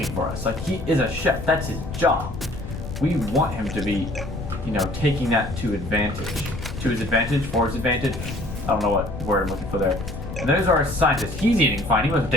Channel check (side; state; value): left; noise; rumble, 9 dB below the sound